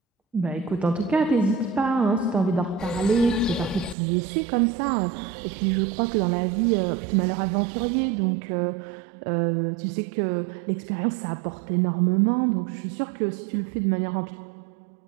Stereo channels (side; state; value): left; drops out; at 4.0 s